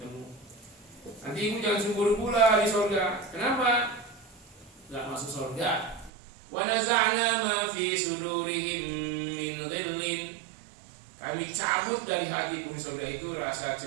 Nanti ibu jangan cemburu pula di surga. Kenapa? Gak masuk surga. Wa naza'na ma fi sudurihim min dhillin. Kami cabut dari hati penghuni surga itu rasa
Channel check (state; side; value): drops out; left; at 6.1 s